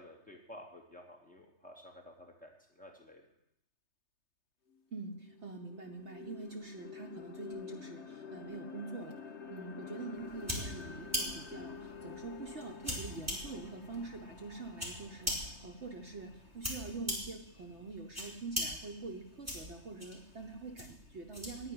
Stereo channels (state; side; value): late; left; 3.2 ms